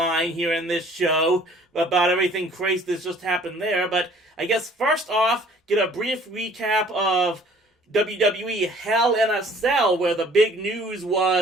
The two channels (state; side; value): normal; both; correlation 0.55